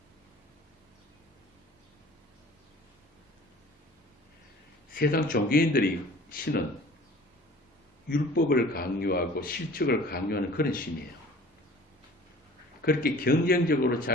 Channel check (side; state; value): both; normal; correlation 0.46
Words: 세상 종교인들이 신은 율법을 강요하고 실적을 강요하는 그런 신이에요. 그렇게 경쟁적으로